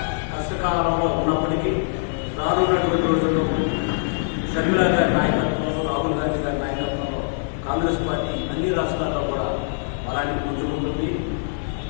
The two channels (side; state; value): right; silent; digital silence